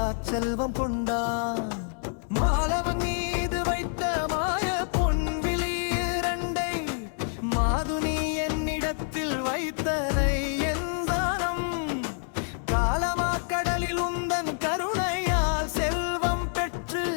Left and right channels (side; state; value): right; silent; 60 dB below the other